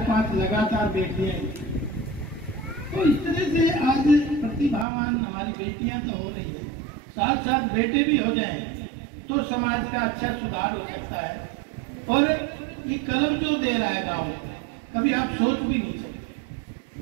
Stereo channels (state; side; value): drops out; left; at 4.9 s